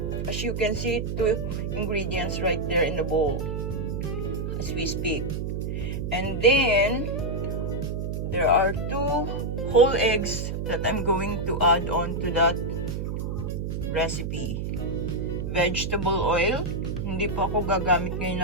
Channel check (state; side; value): noise; right; hum, 3 dB below the sound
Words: As you can see, 2 ingredients right there in the bowl as we speak. And then, there are 2 whole eggs that I'm going to add on to that recipe. Vegetable oil. Hindi po ako gagamit